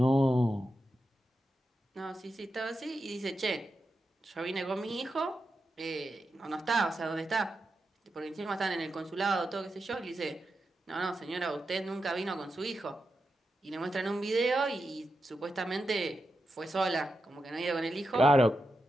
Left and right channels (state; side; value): normal; both; correlation 0.88